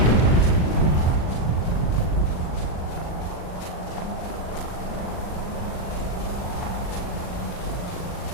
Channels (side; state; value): right; late; 39 ms